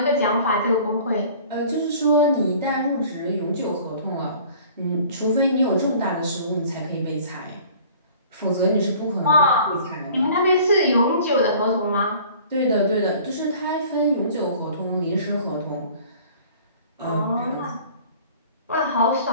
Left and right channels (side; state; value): both; inverted; correlation -0.49